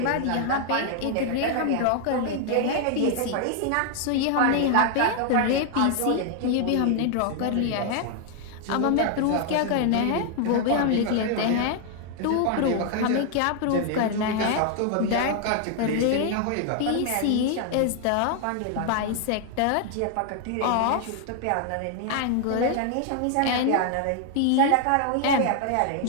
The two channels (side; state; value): both; different; correlation 0.00